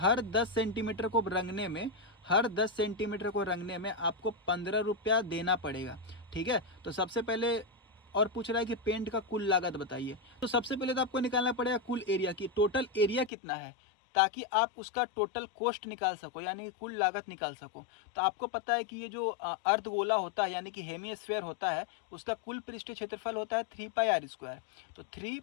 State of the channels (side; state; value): right; drops out; at 13.3 s